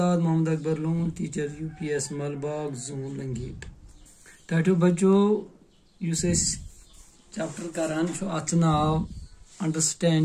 Mohammad Akbar Lone, teacher UPS Malbagh zone Langate. टाटू बच्चों युस चैप्टर करान अत नाव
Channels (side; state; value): both; identical; correlation 1.00